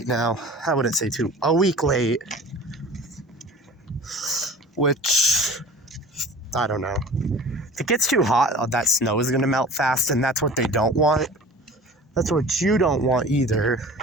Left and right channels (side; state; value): both; normal; correlation 0.41